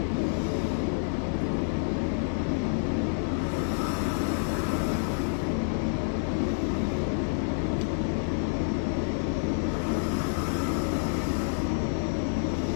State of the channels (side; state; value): right; silent; digital silence